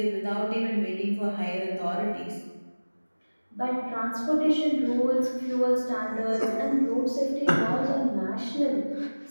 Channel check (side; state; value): both; inverted; correlation -1.00